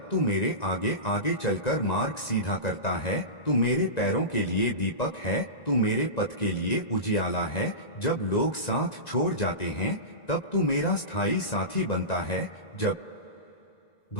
तू मेरे आगे आगे चलकर मार्ग सीधा करता है। तू मेरे पैरों के लिए दीपक है, तू मेरे पथ के लिए उजियाला है। जब लोग साथ छोड़ जाते हैं तब तू मेरा स्थायी साथी बनता है। जब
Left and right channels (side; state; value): right; late; 1.9 ms